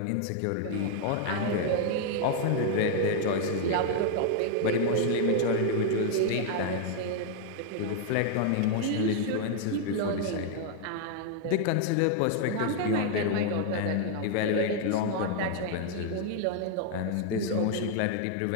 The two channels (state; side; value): different; both; correlation 0.00